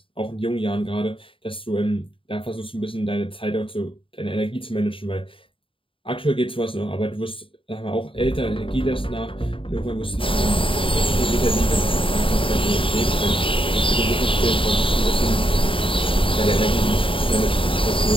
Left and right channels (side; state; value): right; late; 0.25 ms